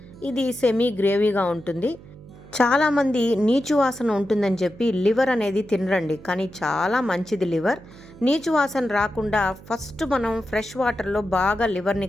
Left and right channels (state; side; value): noise; right; hum, 20 dB below the sound